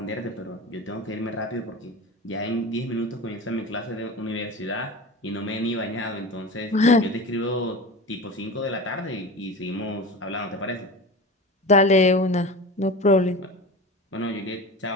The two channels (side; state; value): both; normal; correlation 0.31